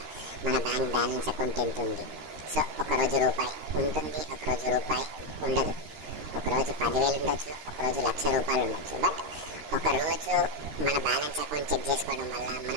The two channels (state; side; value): late; left; 13 ms